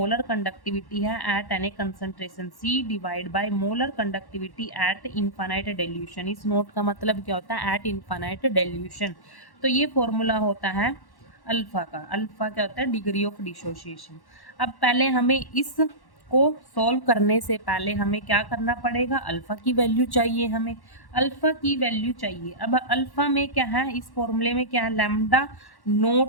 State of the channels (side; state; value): right; late; 1.1 ms